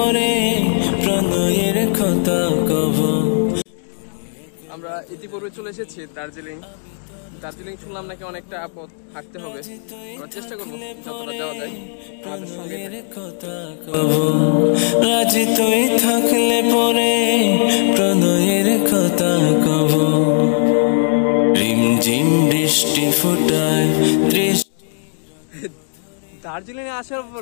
প্রণয়ের কথা কব। আমরা ইতিপূর্বে চলে এসেছি দার্জিলিং। দার্জিলিং শুনলাম নাকি অনেকটা পথ হাঁটতে হবে, আমরা চেষ্টা করবো যতটা যাওয়া যায় আমাদের সঙ্গে। রাজি তুই থাকলে পরে প্রণয়ের কথা কব। রিমঝিম বৃষ্টি ফোটায় দার্জিলিং এ আসার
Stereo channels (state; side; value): silent; right; digital silence